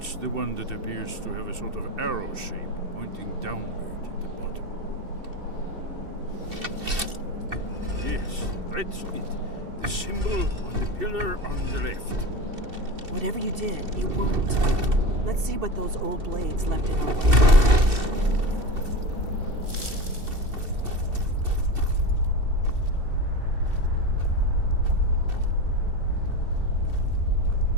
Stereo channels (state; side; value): late; left; 2.7 ms